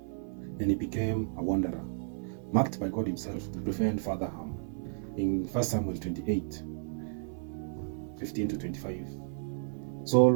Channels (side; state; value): left; silent; 56 dB below the other